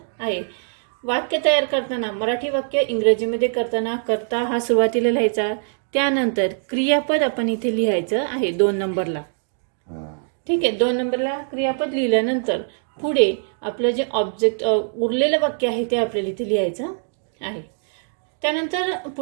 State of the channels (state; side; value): silent; left; digital silence